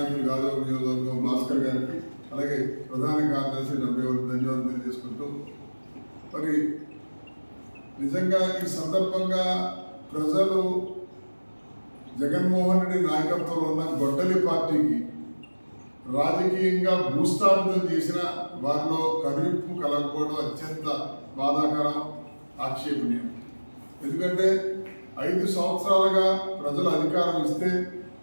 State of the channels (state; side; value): inverted; both; correlation -1.00